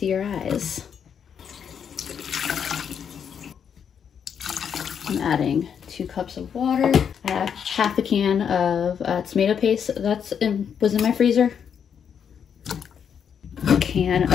your eyes. I'm adding 2 cups of water. I have half a can of tomato paste was in my freezer. A can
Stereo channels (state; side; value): quieter; right; 7.7 dB